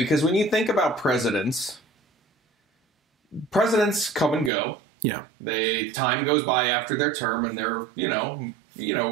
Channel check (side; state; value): left; drops out; at 4.5 s